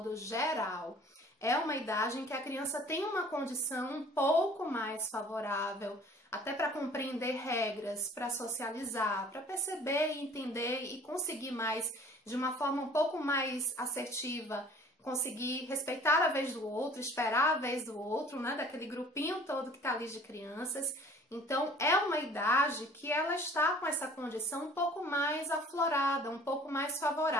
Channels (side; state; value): both; normal; correlation 0.50